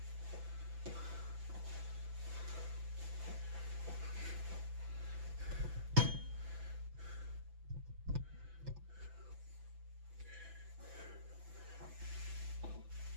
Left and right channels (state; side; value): late; left; 5.9 ms